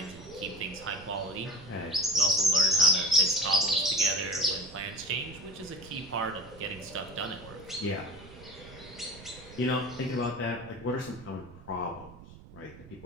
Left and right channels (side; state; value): right; noise; rumble, 18 dB below the sound